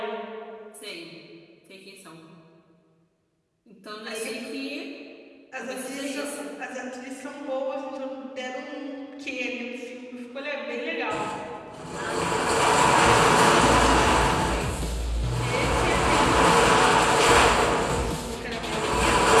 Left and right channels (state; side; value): identical; both; correlation 1.00